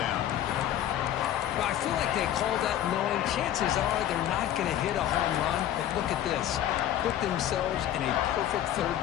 Well, I feel like they call that knowing chances are they're not going to hit a home run. But look at this. Put themselves in a perfect 3rd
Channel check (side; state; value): right; quieter; 11.5 dB